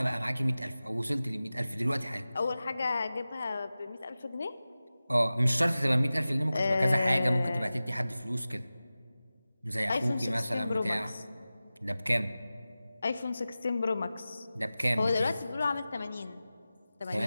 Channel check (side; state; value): both; inverted; correlation -0.96